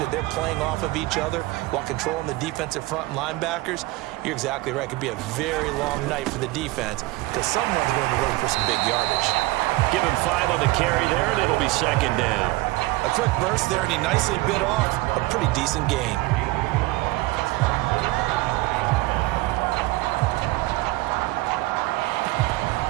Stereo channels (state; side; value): quieter; left; 20.4 dB